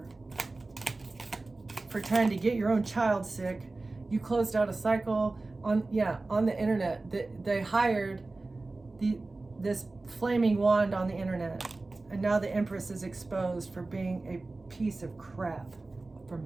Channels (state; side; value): quieter; left; 3.3 dB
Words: For trying to get your own child sick. You closed out a cycle on the internet. They hired this flaming wand on the internet. And now the Empress is exposed for being a piece of crap for